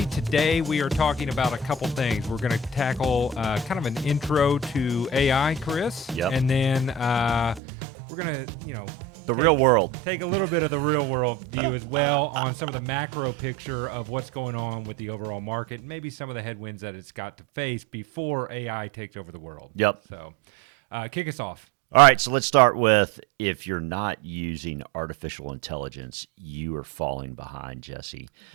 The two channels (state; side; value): drops out; left; at 7.6 s